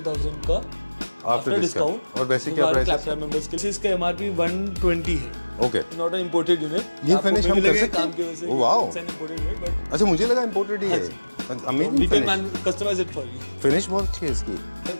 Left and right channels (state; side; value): inverted; both; correlation -1.00